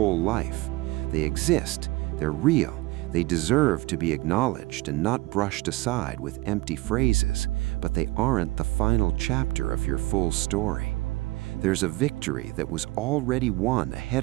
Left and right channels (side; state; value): left; quieter; 20.8 dB